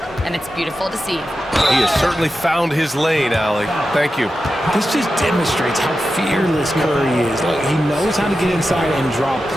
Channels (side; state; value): both; normal; correlation 0.91